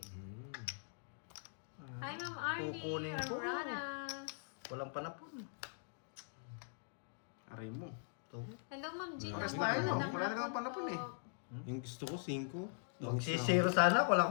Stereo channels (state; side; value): silent; right; digital silence